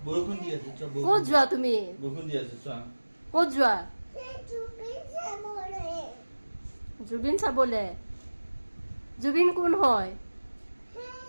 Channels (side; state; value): both; inverted; correlation -1.00